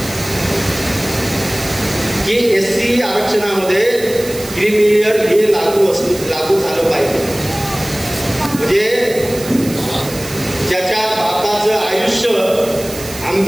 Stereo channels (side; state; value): right; noise; hiss, 13 dB below the sound